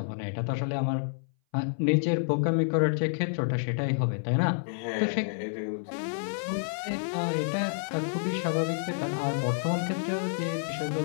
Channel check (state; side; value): silent; right; 57 dB below the other